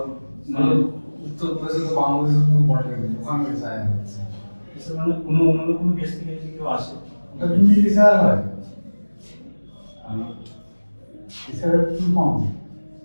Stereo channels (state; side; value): inverted; both; correlation -1.00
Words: মানে উত্তরপ্রদেশে তো বাংলাদেশের কোনো বর্ডার নেই, ওখানে এসআই হচ্ছে। মানে অন্য কোনো দেশ থেকে যদি কেউ আসে ওটা তুমি এসআই হয় এসআই কি কম